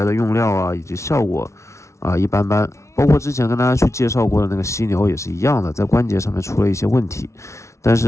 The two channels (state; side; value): late; right; 0.14 ms